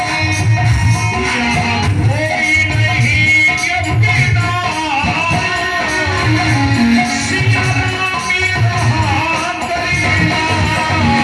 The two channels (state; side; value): identical; both; correlation 1.00